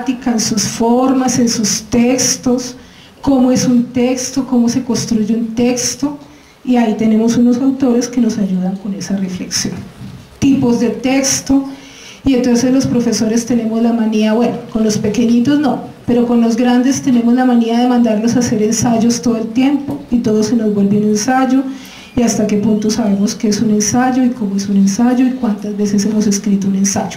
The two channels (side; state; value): both; identical; correlation 1.00